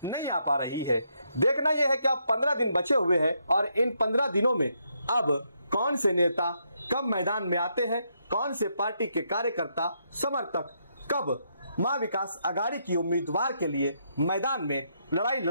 नहीं आ पा रही है? देखना यह है कि अब 15 दिन बचे हुए हैं और इन 15 दिनों में अब कौन से नेता कब मैदान में आते हैं, कौन से पार्टी के कार्यकर्ता समर्थक कब महाविकास आघाड़ी की उम्मीदवार के लिए मैदान में लड़ाई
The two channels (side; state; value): both; inverted; correlation -0.77